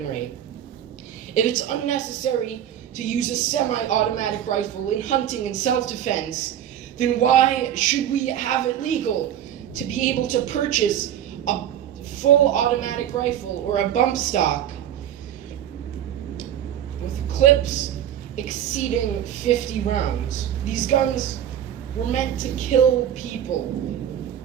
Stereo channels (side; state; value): left; quieter; 10.5 dB